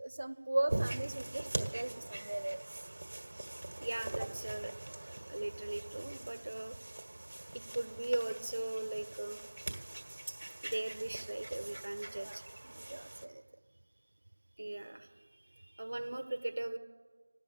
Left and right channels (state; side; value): inverted; both; correlation -1.00